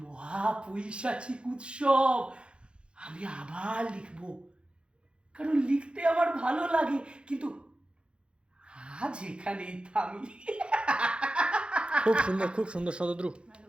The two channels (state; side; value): late; left; 0.056 ms